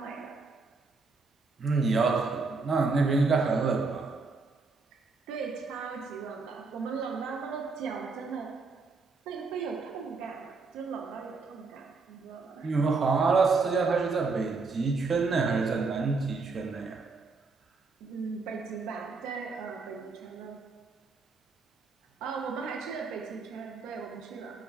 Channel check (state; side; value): quieter; left; 4.2 dB